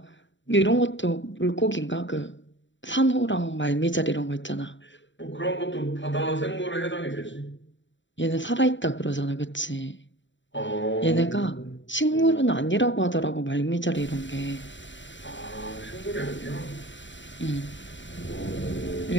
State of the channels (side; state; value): right; late; 0.54 ms